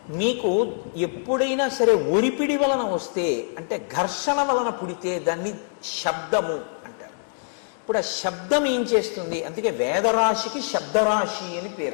మీకు ఎప్పుడైనా సరే ఒరిపిడి వలన వస్తే, అంటే ఘర్షణ వలన పుడితే దాన్ని శబ్దము అంటారు. ఇప్పుడు ఆ శబ్దం ఏం చేస్తుంది? అందుకే వేదరాశికి శబ్దరాశి అని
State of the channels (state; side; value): silent; right; digital silence